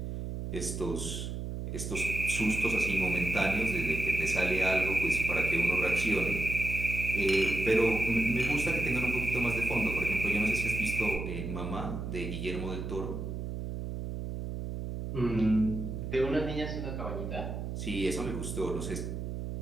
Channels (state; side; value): noise; right; hum, 5 dB below the sound